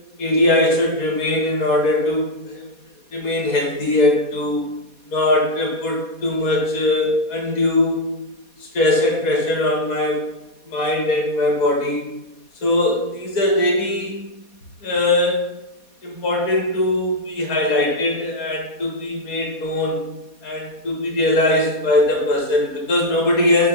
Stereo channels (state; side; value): late; right; 4.2 ms